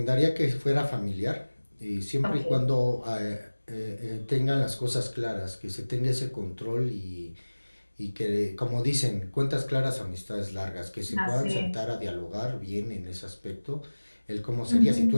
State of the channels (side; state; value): both; inverted; correlation -1.00